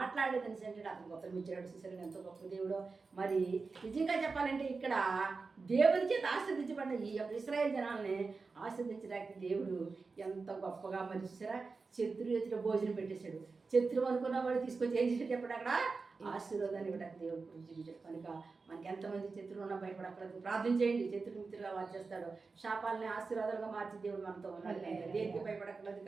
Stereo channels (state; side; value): quieter; left; 4.3 dB